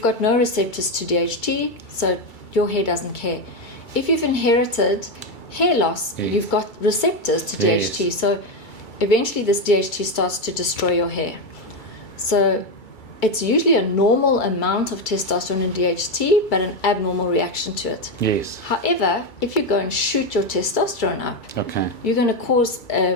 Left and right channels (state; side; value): late; right; 2.3 ms